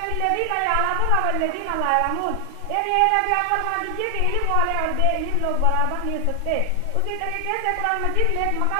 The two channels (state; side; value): different; both; correlation 0.00